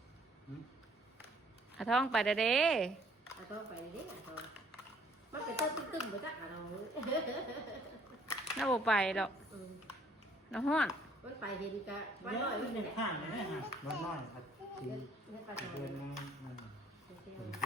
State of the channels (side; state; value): both; normal; correlation 0.60